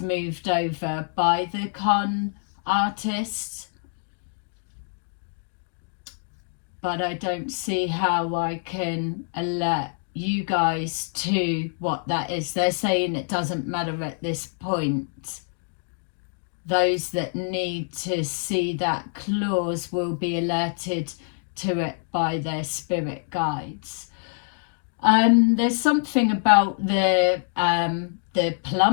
over by the con artists. But I don't see how I can alert you guys to what that is. They're saying it doesn't matter at this point. Those that need to see that clause will be alerted to it by their spirit guides. There's something about the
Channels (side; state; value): right; silent; digital silence